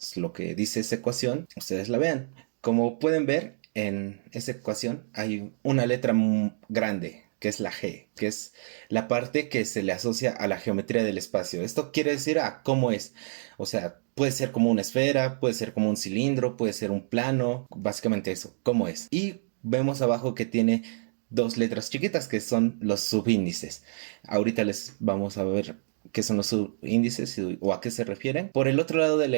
lo que dice esa ecuación, ustedes la vean. Como pueden ver, en esa ecuación hay una letra grande, que es la G, que es la parte que se le asocia a la geometría del espacio. Esto quiere decir a cómo es. O sea, puede ser como una esfera, puede ser como un cilindro, puede ser un plano, básicamente eso, cómo es. Y vemos abajo que tiene dos letras chiquitas que son los subíndices. Ahorita les vamos a ver qué son los subíndices o a qué se refieren. Por el otro lado de la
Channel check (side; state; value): left; silent; digital silence